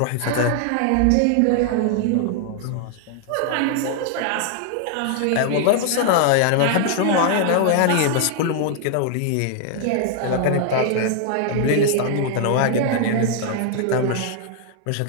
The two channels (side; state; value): both; different; correlation 0.00